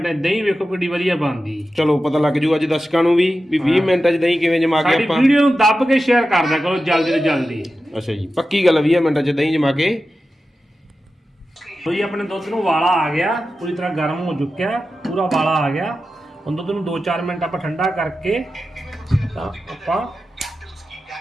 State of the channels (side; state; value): both; normal; correlation 0.92